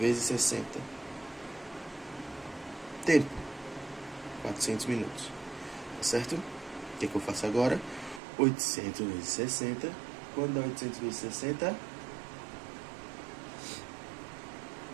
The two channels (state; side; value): drops out; left; at 8.2 s